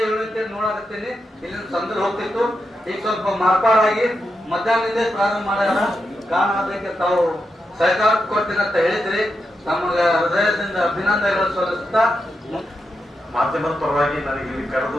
7ನೇತೆ ನೋಡಾಕತ್ತೀನಿ, ಇಲ್ಲಿ ಸಂದಲ್ಲಿ ಹೋಗ್ತಿತ್ತು. ಈಗ ಸ್ವಲ್ಪ ಮಾರ್ಪಾಡಾಗಿ ಮಧ್ಯಾಹ್ನದಿಂದ ಪ್ರಾರಂಭ ಮಾಡ್ಯಾರ. ಕಾರಣ ಅದಕ್ಕೆ ತಾವು ಸಹಕಾರ ಕೊಡ್ತೀನಿ ಅಂತ ಹೇಳಿದ್ರಿ. ತಮಗೆ ಹೃದಯದಿಂದ ಅಭಿನಂದನೆಗಳು ಸಲ್ಲಿಸುತ್ತಾ ಮಾಧ್ಯಮದ ಪರವಾಗಿ ನನಗೆ ಇಲ್ಲಿ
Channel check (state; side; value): normal; both; correlation 0.86